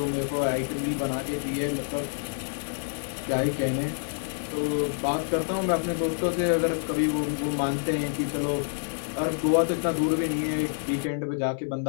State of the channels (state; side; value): silent; right; 59 dB below the other